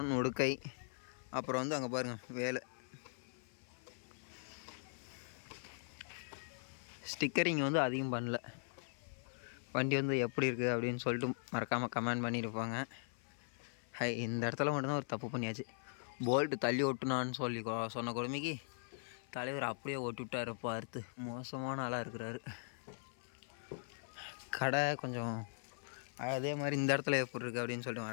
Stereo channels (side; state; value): right; silent; 51 dB below the other